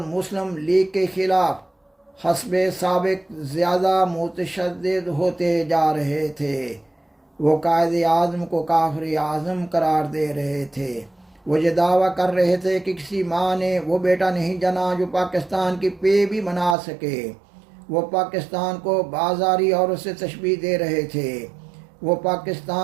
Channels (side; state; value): left; drops out; at 16.8 s